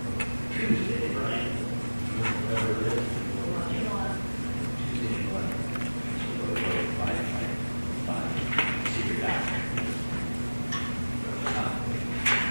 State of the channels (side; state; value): both; inverted; correlation -1.00